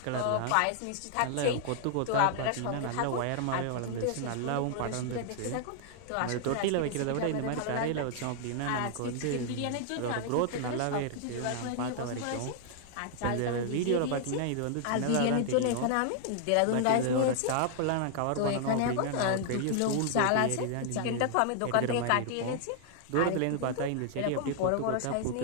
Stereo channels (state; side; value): different; both; correlation 0.00